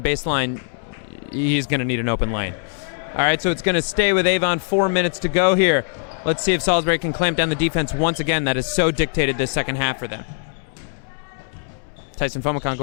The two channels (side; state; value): right; silent; 65 dB below the other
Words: baseline, he's going to need an open lane. All right, so it's going to stay with Avon. 4 minutes to go here. Let's see if Salisbury can clamp down the defense once again. That has so dictated this second half for them. Tyson Fomicon